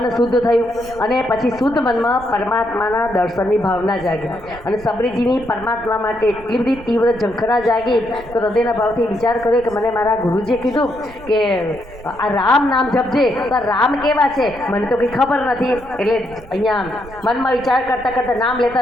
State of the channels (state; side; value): noise; right; rumble, 18 dB below the sound